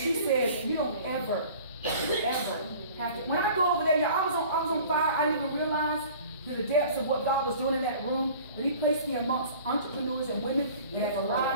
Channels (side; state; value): both; inverted; correlation -0.46